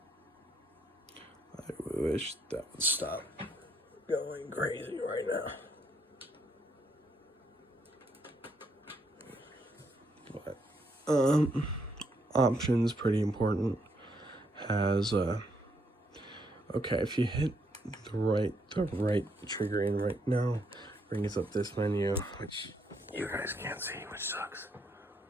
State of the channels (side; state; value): both; normal; correlation 0.74